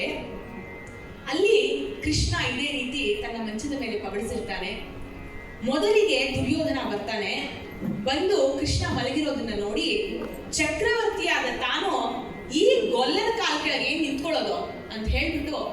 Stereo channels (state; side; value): identical; both; correlation 1.00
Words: ಅಲ್ಲಿ ಕೃಷ್ಣ ಇದೇ ರೀತಿ ತನ್ನ ಮಂಚದ ಮೇಲೆ ಪಬಡಿಸಿರ್ತಾನೆ. ಮೊದಲಿಗೆ ದುರ್ಯೋಧನ ಬರ್ತಾನೆ. ಬಂದು ಕೃಷ್ಣ ಮಲಗಿರೋದನ್ನ ನೋಡಿ ಚಕ್ರವರ್ತಿಯಾದ ತಾನು ಈ ಗೊಲ್ಲದ ಕಾಲ ಕೆಳಗೆ ಏನ್ ನಿಂತ್ಕೊಳ್ಳೋದು ಅಂತ ಹೇಳ್ಬಿಟ್ಟು